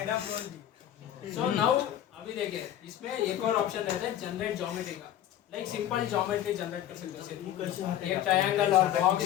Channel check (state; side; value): quieter; right; 11.6 dB